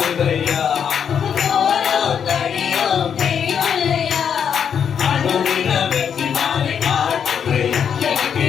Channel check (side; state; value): right; quieter; 7.7 dB